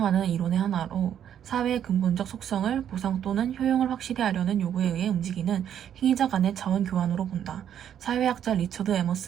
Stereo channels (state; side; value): quieter; left; 9.6 dB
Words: 이론의 하나로 사회의 근본적 속성을 보상 또는 효용을 확실히 하려는 요구에 의해 움직이는 행위자 간의 자원 교환으로 본다. 사회학자 리처드